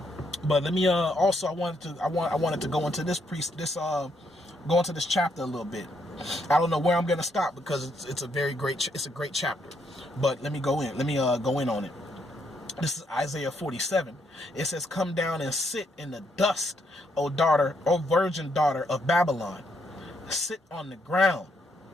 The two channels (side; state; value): both; normal; correlation 0.75